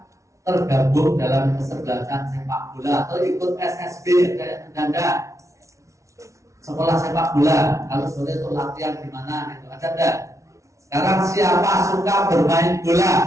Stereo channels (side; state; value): left; late; 0.14 ms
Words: tergabung dalam kesebelasan sepak bola atau ikut SSB kayak Anda sekolah sepak bola, kalau sore itu latihan di mana itu ada enggak? Sekarang siapa suka bermain